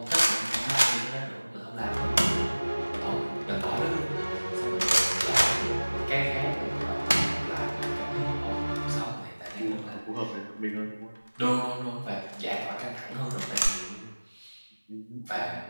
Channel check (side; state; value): both; inverted; correlation -1.00